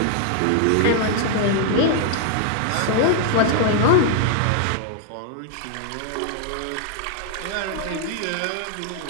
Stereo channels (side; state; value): both; different; correlation -0.01